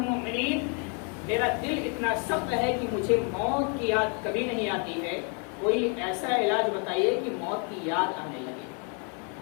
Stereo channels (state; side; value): quieter; right; 38.3 dB